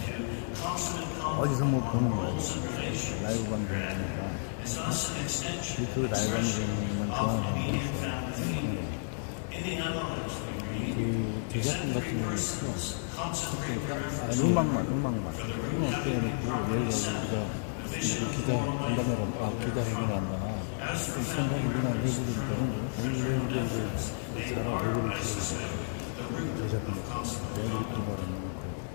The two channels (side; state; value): right; silent; digital silence